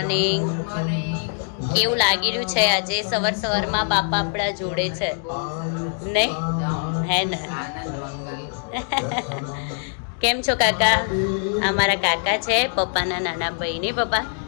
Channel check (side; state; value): right; silent; 63 dB below the other